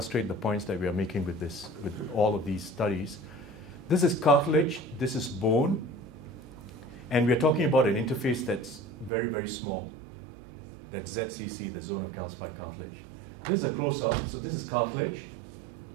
the points that we are making with all of these studies. This is cartilage, this is bone, and we're talking about an interface that's very, very small. That's ZCC, the zone of calcified cartilage. This is a close-up, so this is cartilage,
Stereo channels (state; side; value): drops out; left; at 9.1 s